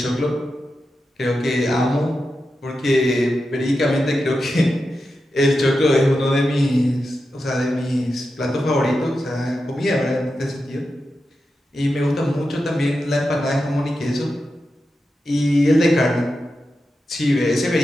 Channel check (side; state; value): both; normal; correlation 0.90